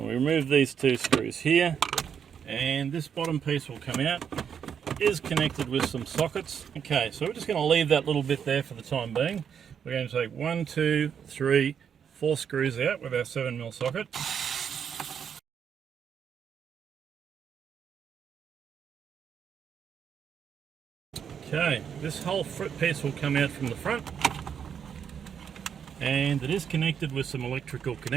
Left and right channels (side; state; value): left; quieter; 7.7 dB